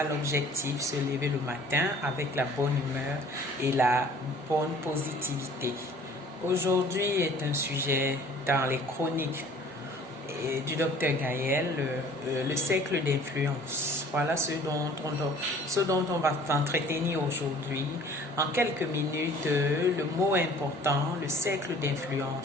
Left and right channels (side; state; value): both; normal; correlation 0.51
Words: l'objectif, se lever le matin avec la bonne humeur et la bonne positivité. Aujourd'hui est un sujet dans les chroniques du docteur Gaël, le cercle d'influence. Voilà ce dont on va s'entretenir aujourd'hui. En quelques minutes, le mot important, le cercle